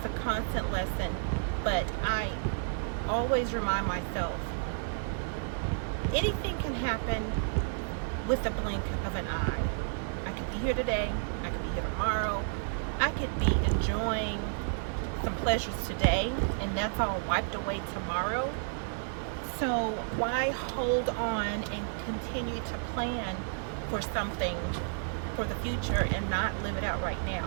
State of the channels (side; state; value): left; silent; digital silence